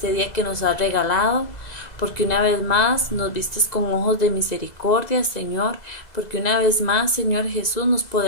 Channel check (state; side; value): late; right; 2.0 ms